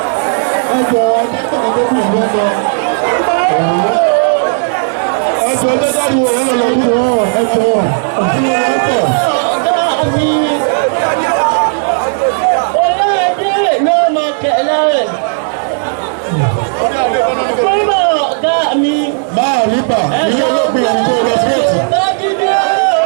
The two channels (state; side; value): silent; left; digital silence